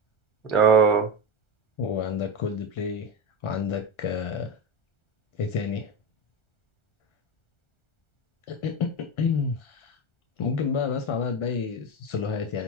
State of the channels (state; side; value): late; right; 1.4 ms